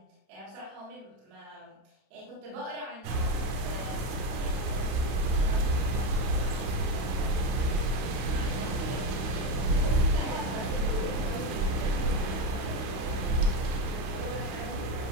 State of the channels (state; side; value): late; left; 32 ms